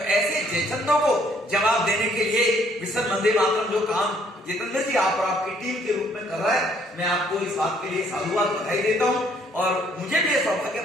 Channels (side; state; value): both; normal; correlation 0.65